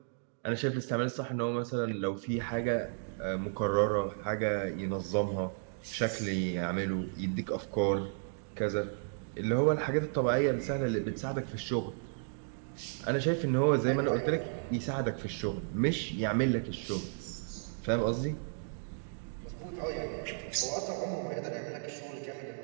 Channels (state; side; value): silent; left; digital silence